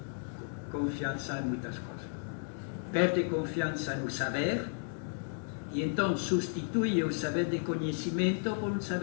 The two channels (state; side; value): silent; right; 55 dB below the other